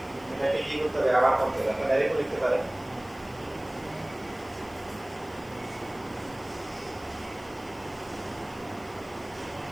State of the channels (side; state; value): left; noise; hiss, 24 dB below the sound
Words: এটাকে কি করতে হবে, আবার করতে হবে। আপনারা ডাইরেক্ট লিখতে পারেন,